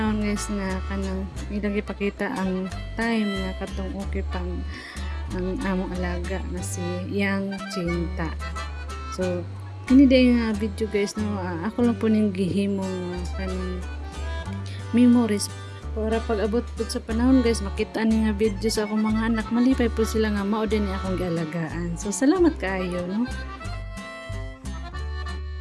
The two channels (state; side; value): identical; both; correlation 1.00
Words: guys nga kanang ilang ipakita ang time nga katong okay pang ang among alaga nga si Yang Cinta. So kini day nga video guys no ako lang po ning gihimo kanang memories para pag-abot po sa panahon guys makita ni nga video sa akong mga anak malipay po sila nga mao din ni akong gialagaan. So salamat kaayo no.